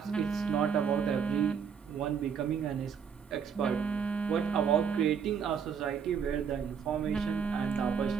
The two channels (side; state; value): left; quieter; 7.0 dB